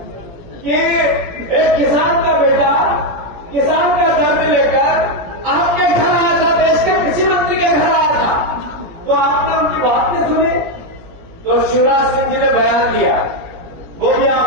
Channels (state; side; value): late; left; 17 ms